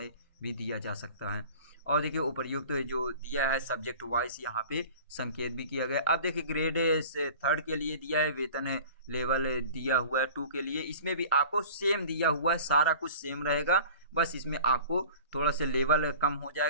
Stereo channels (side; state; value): both; inverted; correlation -0.43